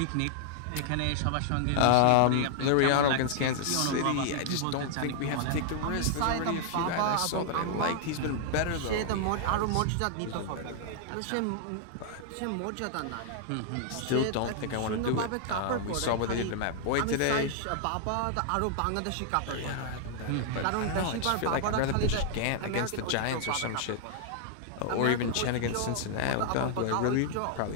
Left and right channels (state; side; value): different; both; correlation 0.00